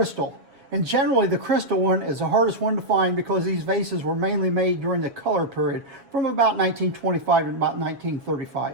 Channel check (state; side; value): late; left; 7.3 ms